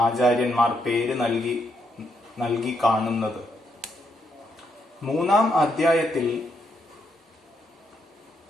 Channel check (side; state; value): both; normal; correlation 0.77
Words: ആചാര്യന്മാർ പേര് നൽകി കാണുന്നത്. മൂന്നാം അധ്യായത്തിൽ